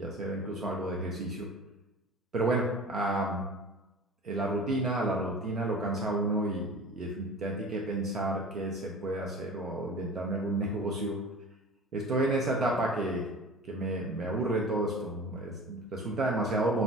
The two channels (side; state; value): both; normal; correlation 0.38